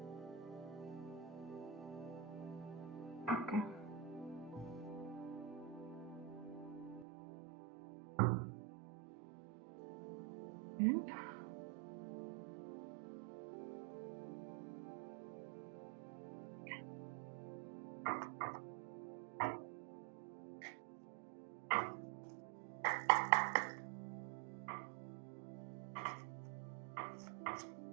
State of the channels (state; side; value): drops out; left; at 7.1 s